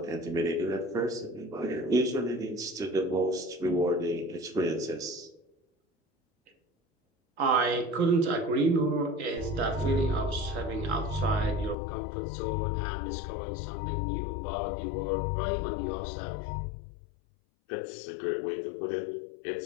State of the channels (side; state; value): right; drops out; at 11.8 s